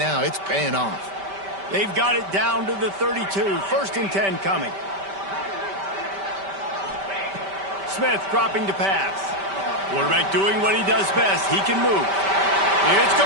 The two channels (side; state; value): left; late; 5.1 ms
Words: it's paying off. They've got it down to the 32. 1st and 10 coming. Smith dropping to pass. Quarterback doing what he does best. He can move. It's